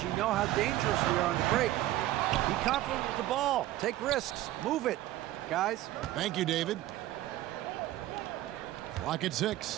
You know how dangerous we are on the break. Be confident with the ball. Take risks. Move it, guys. Thank you, David. Clock at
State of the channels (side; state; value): left; quieter; 15.0 dB